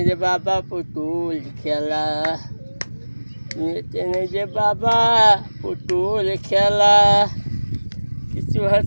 যে বাবা পুতুল খেলা। দুনিয়াতে নেই যে বাবা পুতুল খেলা, কিছু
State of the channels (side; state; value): both; inverted; correlation -1.00